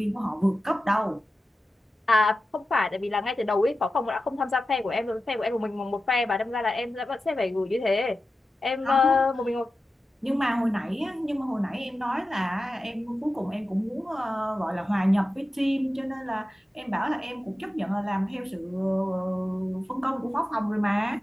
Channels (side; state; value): both; normal; correlation 0.93